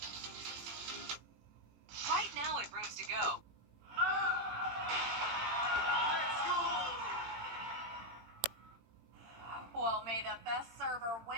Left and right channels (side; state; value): left; late; 18 ms